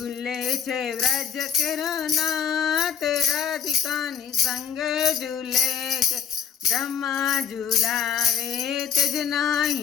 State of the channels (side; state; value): right; quieter; 8.1 dB